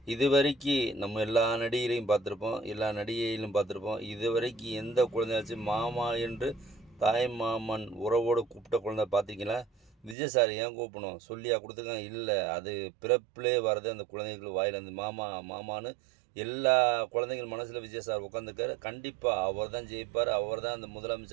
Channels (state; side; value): drops out; left; at 10.2 s